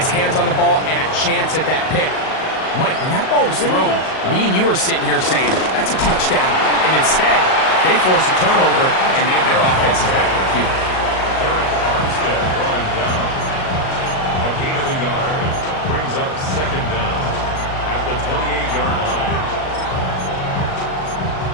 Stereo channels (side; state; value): right; late; 38 ms